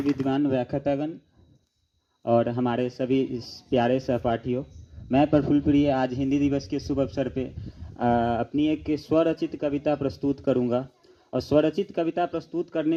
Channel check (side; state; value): both; identical; correlation 1.00